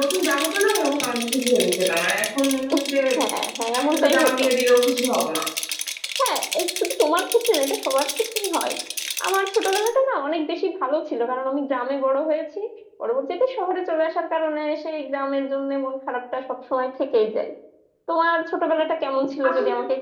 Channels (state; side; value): identical; both; correlation 1.00